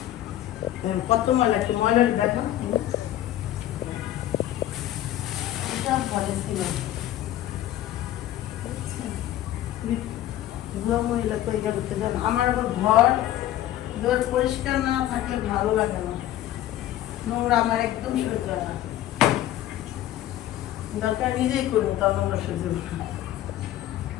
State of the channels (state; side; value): quieter; right; 13.1 dB